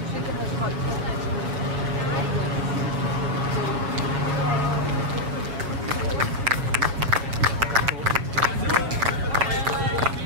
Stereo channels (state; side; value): late; left; 7.2 ms